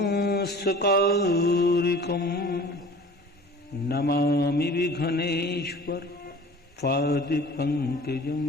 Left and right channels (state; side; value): normal; both; correlation 0.43